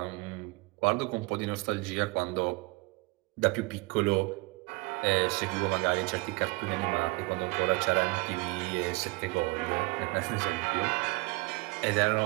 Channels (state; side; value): quieter; left; 25.7 dB